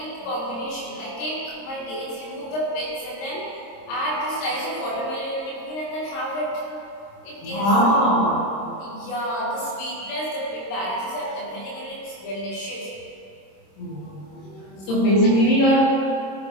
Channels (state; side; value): late; right; 26 ms